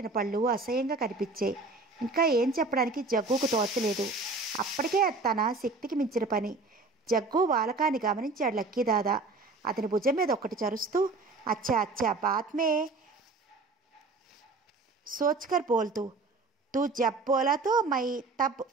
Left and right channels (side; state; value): left; quieter; 3.6 dB